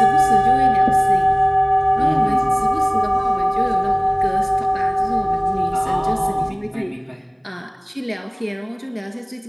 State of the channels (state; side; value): identical; both; correlation 1.00